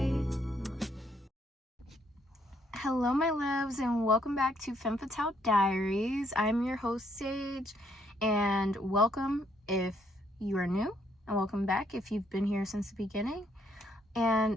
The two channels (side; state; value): both; normal; correlation 0.70